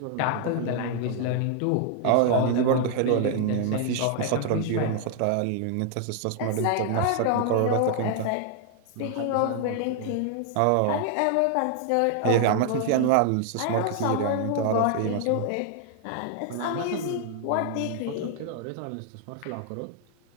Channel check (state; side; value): different; both; correlation 0.00